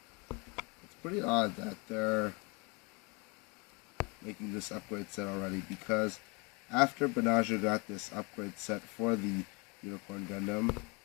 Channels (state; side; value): quieter; right; 29.1 dB